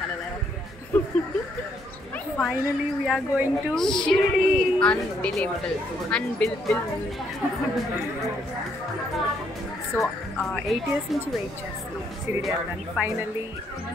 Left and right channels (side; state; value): both; normal; correlation 0.71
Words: Finally we are going to Shirdi. Unbelievable. So 8 years నుంచి వెయిట్ చేస్తున్నాం షిరిడి వెళ్ళడానికి. ఫైనల్లీ